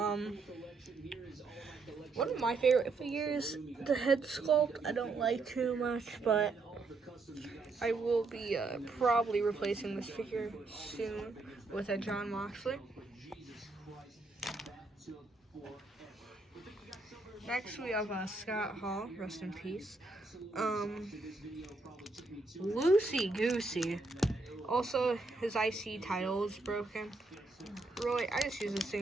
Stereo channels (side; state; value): left; quieter; 3.6 dB